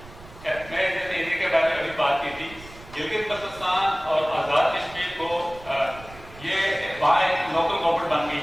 میں جب area کے بارے میں ابھی بات کی تھی, گلگت بلتستان اور آزاد کشمیر کو یہ وہاں ایک لوکل گورنمنٹ بن گئی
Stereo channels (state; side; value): noise; right; rumble, 19 dB below the sound